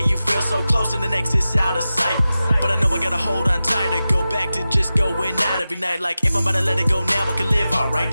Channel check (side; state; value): both; inverted; correlation -0.94